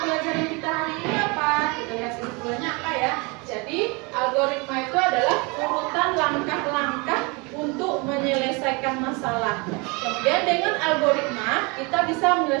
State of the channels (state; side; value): quieter; left; 29.0 dB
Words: pelajaran kita hari ini apa? Kita lihat kesimpulannya apa ya. Jadi, algoritma itu adalah urutan langkah-langkah untuk menyelesaikan masalah. Kemudian dengan algoritma, kita bisa